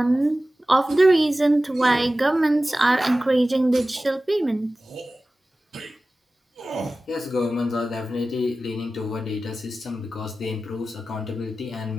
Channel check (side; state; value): both; normal; correlation 0.96